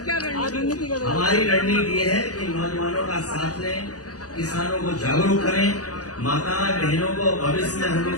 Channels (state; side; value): late; right; 0.67 ms